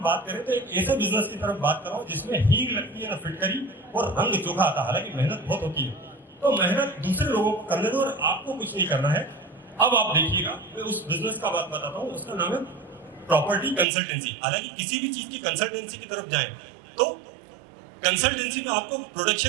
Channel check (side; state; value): left; drops out; at 13.9 s